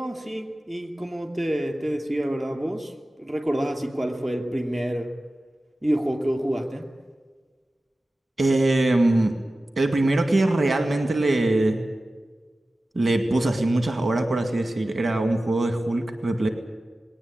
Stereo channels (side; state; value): both; normal; correlation 0.96